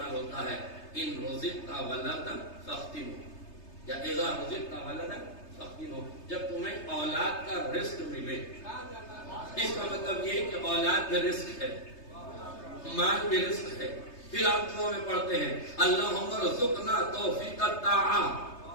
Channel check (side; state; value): right; late; 3.3 ms